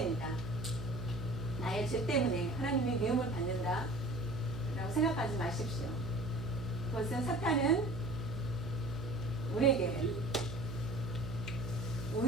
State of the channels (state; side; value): noise; right; hum, 8 dB below the sound